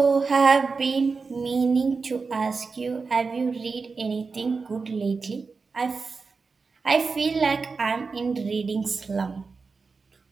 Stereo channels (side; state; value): left; quieter; 4.6 dB